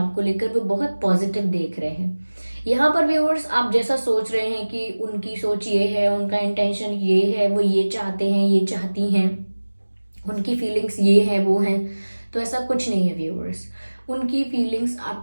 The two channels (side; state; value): both; inverted; correlation -1.00